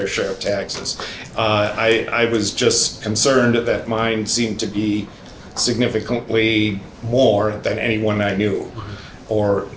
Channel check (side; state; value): both; identical; correlation 1.00